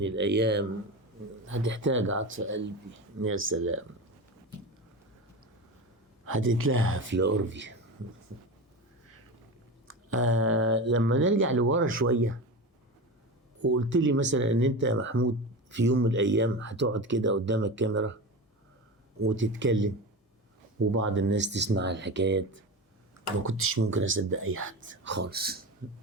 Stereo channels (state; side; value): normal; both; correlation 0.25